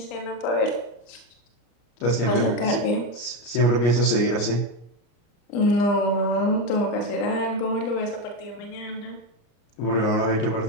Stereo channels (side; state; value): right; late; 34 ms